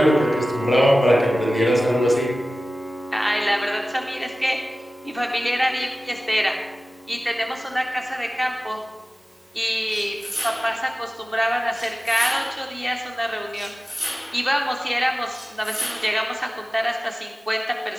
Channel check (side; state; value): both; normal; correlation 0.96